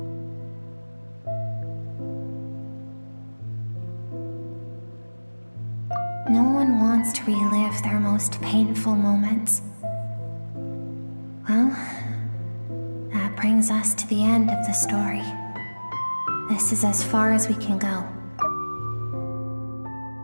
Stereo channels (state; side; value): inverted; both; correlation -1.00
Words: No one wants to relive their most painful moments. Well, that brings us to the end of the story. This is as far as we can go.